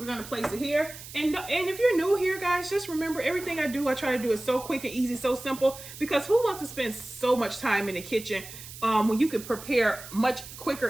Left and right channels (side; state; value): right; noise; hiss, 14 dB below the sound